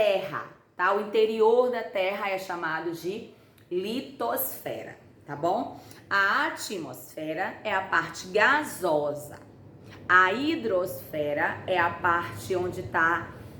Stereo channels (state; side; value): identical; both; correlation 1.00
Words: tá? O interior da terra é chamado de litosfera, tá bom? A atmosfera é a parte gasosa. A hidrosfera é a parte onde está